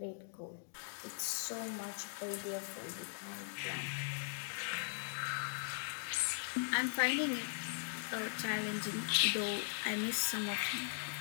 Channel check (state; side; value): silent; right; digital silence